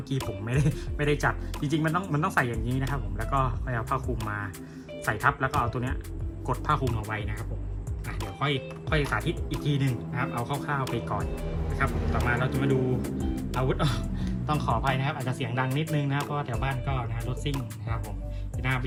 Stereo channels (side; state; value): both; identical; correlation 1.00